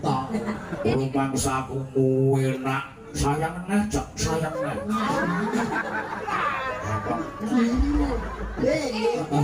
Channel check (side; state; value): both; identical; correlation 1.00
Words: Rumangsaku kuwi nak sayang neh, Cak, sayang neh.